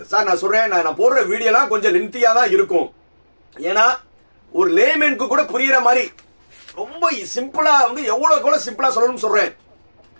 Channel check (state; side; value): inverted; both; correlation -1.00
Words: சார் நான் சொல்றேன், நான் போடுற வீடியோலாம் கொஞ்சம் லென்த்தியா தான் இருக்கும். ஏன்னா ஒரு லேமேனுக்கு கூட புரியுற மாதிரி ரொம்ப சிம்பிளா வந்து எவ்வளவு கூட சிம்பிளா சொல்லணும்னு சொல்றேன்.